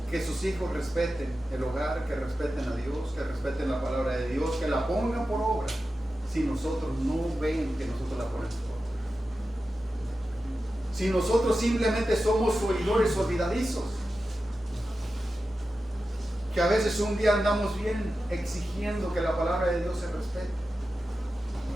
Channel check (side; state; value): both; normal; correlation 0.92